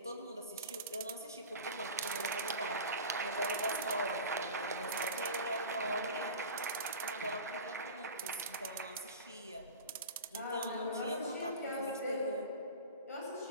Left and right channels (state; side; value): inverted; both; correlation -0.33